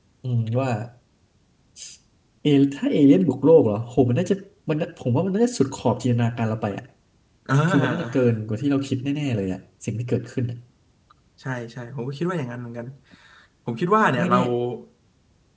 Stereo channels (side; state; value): both; identical; correlation 1.00